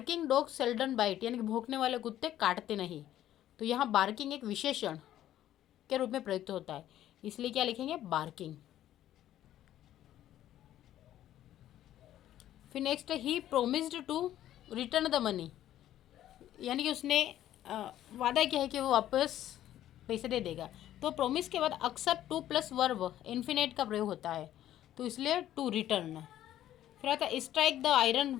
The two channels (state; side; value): quieter; right; 12.4 dB